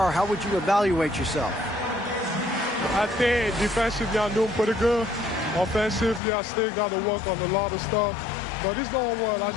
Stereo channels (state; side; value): drops out; right; at 6.2 s